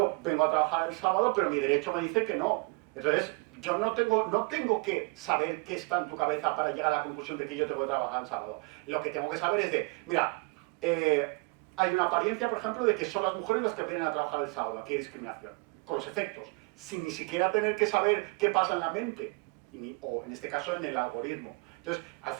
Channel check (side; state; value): left; quieter; 31.3 dB